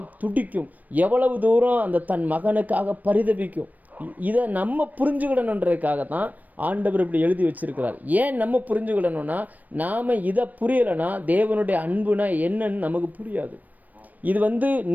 துடிக்கும், எவ்வளவு தூரம் அந்த தன் மகனுக்காக பரிதபிக்கும். இதை நம்ம புரிஞ்சுக்கிடணுன்றதுக்காக தான் ஆண்டவர் இப்படி எழுதி வச்சிருக்கிறார். ஏன் நம்ம புரிஞ்சுக்கிடணும்னா நாம் இதை புரியலைன்னா தேவனுடைய அன்புனா என்னன்னு நமக்கு புரியாது. இது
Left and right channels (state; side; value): late; left; 0.081 ms